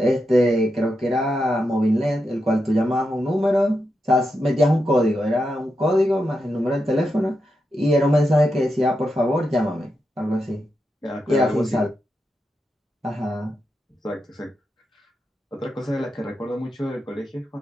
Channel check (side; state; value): both; normal; correlation 0.86